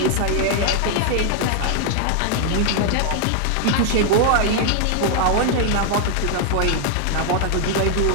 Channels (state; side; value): different; both; correlation 0.00